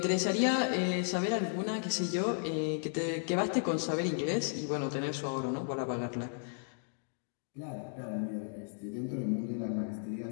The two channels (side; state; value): right; silent; digital silence